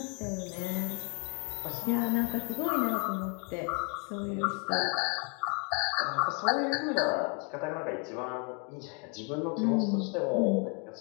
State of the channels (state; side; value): quieter; right; 36.6 dB